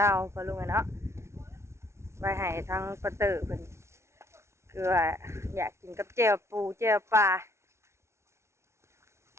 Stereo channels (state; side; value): late; left; 0.13 ms